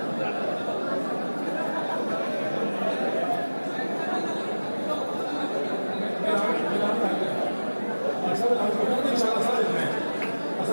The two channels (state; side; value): inverted; both; correlation -1.00